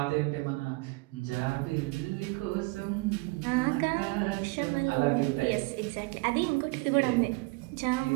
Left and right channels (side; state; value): left; quieter; 25.0 dB